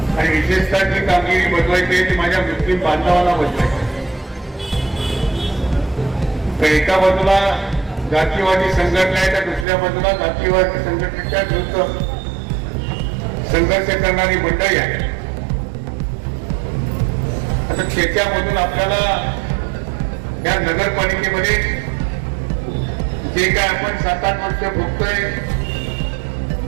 आणि विशेषतः जी कामगिरी बजवायची आहे ती माझ्या मुस्लिम बांधवांना बजवायची आहे. तर एका बाजूला जातीवादी संघटना आहे, तर दुसऱ्या बाजूला जातीवादी संघटनेच्या विरुद्ध संघर्ष करणारी मंडळी आहे. आता त्याच्यामधून आपल्याला या नगरपालिकेमध्ये जे काय आपण 7-8 वर्ष भोगतोय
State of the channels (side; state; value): left; drops out; at 9.7 s